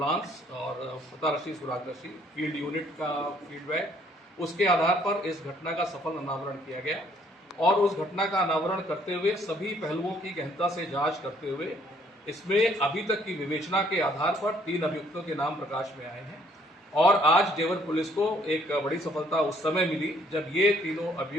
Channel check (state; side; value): normal; both; correlation 0.64